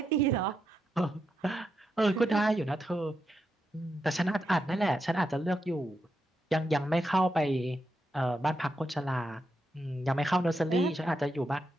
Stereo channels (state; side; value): normal; both; correlation 0.84